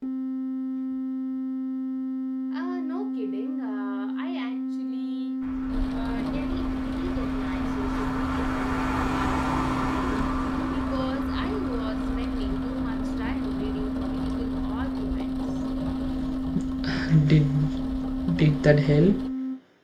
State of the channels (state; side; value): identical; both; correlation 1.00